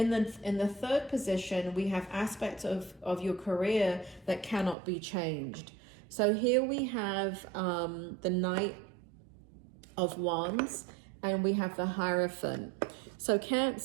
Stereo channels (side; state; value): left; drops out; at 4.8 s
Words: the third position, we have aspects of your career that cannot be changed. So here we have the Knight of Wands, and we have the Hierophant. So